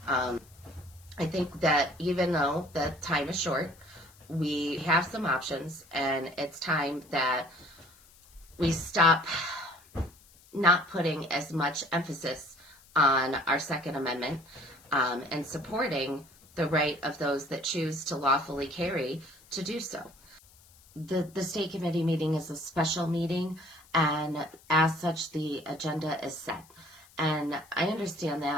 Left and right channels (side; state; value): left; noise; hiss, 26 dB below the sound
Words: I think that even though the time is short, we have some options, and it's time that we stop not putting as much emphasis on our Second Amendment and supporting the right of those that choose to lawfully carry to do so. the state committee meeting is a special meeting, and as such, the agenda is set. And I understand